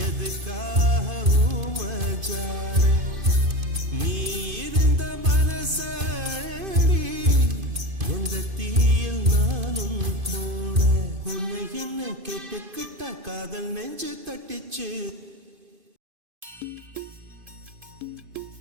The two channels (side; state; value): left; late; 2.5 ms